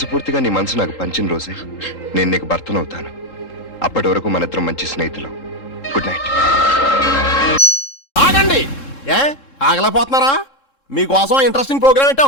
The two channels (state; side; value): late; right; 3.7 ms